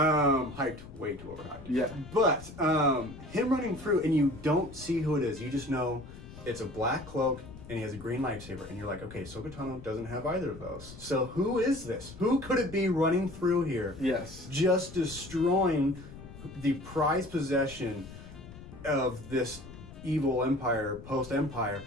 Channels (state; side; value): noise; left; rumble, 15 dB below the sound